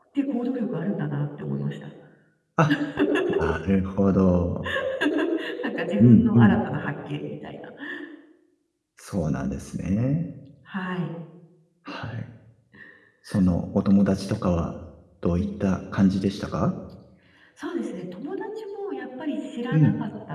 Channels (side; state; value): both; identical; correlation 1.00